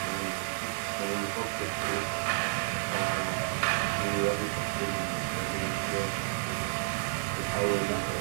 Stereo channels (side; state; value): left; silent; digital silence